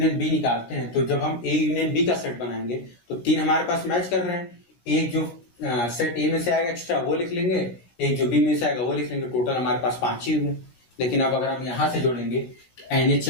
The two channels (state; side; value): late; right; 16 ms